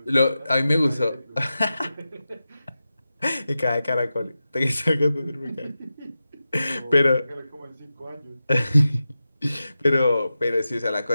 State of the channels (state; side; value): inverted; both; correlation -0.92